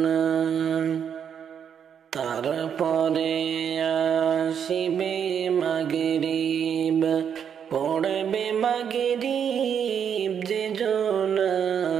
তারপরে আসিবে মাগরিব পড়বে মাগরিব যে জনা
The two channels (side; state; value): left; quieter; 8.0 dB